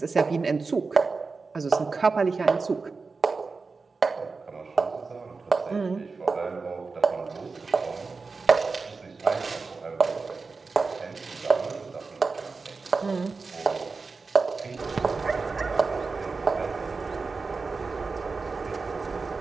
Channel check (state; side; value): quieter; left; 4.3 dB